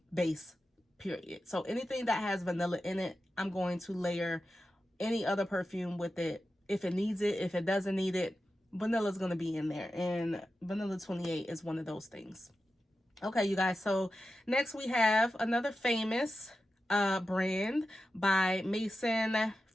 base, period. So anything that has vanilla in it, I'm going to layer any other perfume with it if it needs it. If it doesn't need it, vanilla is going to be in there, and vanilla 28 is one of those things. Okay, you guys, so next we have another famous brand by Mason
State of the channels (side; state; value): both; normal; correlation 0.91